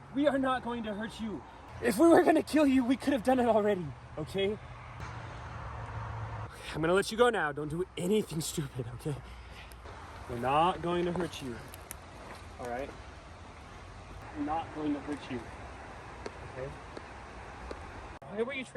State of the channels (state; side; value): identical; both; correlation 1.00